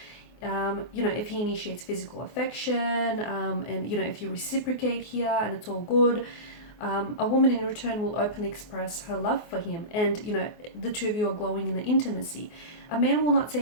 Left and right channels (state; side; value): late; right; 24 ms